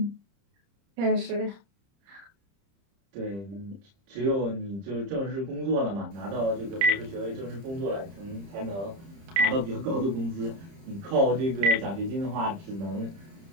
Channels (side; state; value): left; late; 30 ms